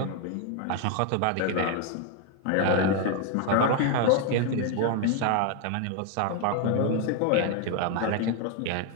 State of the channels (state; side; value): different; both; correlation 0.01